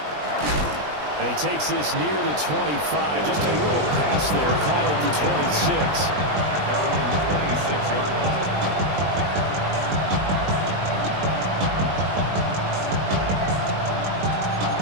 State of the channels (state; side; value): late; left; 20 ms